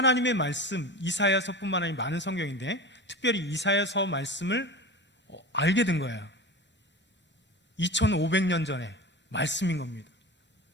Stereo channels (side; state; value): both; normal; correlation 0.30